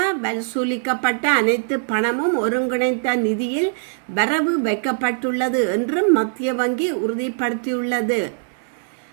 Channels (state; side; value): silent; left; digital silence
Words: வசூலிக்கப்பட்ட அனைத்து பணமும் ஒருங்கிணைந்த நிதியில் வரவு வைக்கப்பட்டுள்ளது என்றும் மத்திய வங்கி உறுதிப்படுத்தியுள்ளது.